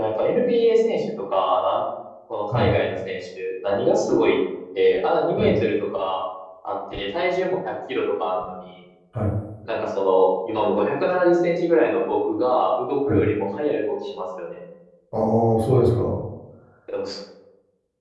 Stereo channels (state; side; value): identical; both; correlation 1.00